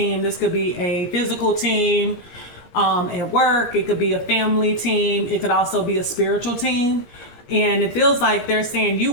This could be a physical team at work. It could be a family team. It could also be a spiritual team. And it feels like they're saying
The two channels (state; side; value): late; right; 17 ms